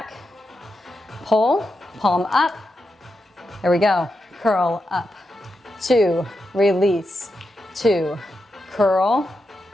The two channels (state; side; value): normal; both; correlation 0.87